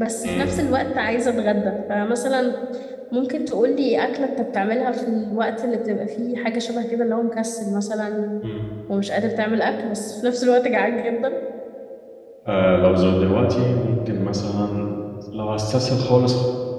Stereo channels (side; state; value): both; identical; correlation 1.00